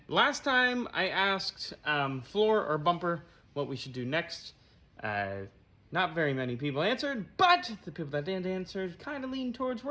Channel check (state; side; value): identical; both; correlation 1.00